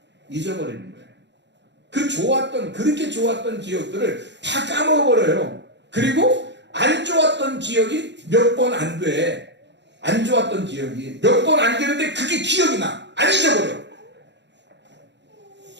잊어버리는 거예요. 그렇게 좋았던 기억들을 다 까먹어버려요. 그리고 안 좋았던 기억이 몇 번 안 돼. 안 좋았던 기억이 몇 번 안 되는데 그게 기억이 나. 안 잊어버려.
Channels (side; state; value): left; late; 0.52 ms